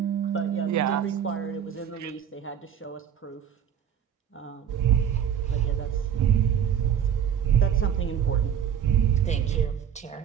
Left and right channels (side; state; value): left; quieter; 8.9 dB